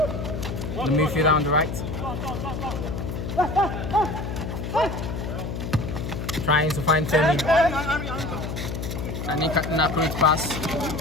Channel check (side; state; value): left; noise; hum, 5 dB below the sound